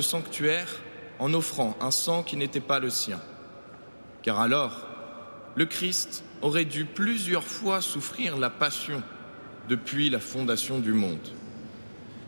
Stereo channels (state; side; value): inverted; both; correlation -1.00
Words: sanctuaire en offrant un sang qui n'était pas le sien. Car alors, le Christ aurait dû plusieurs fois souffrir la passion depuis la fondation du monde.